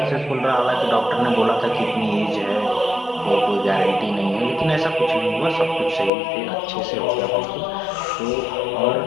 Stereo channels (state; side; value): drops out; right; at 6.1 s